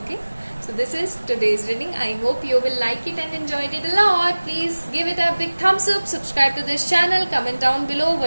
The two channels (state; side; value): inverted; both; correlation -1.00